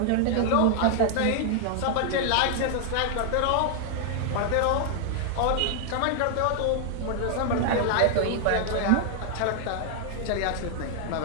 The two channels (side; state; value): both; different; correlation 0.00